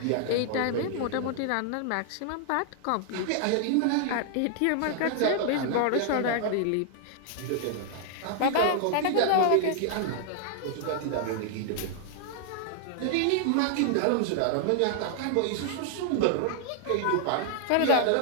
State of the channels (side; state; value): both; different; correlation -0.01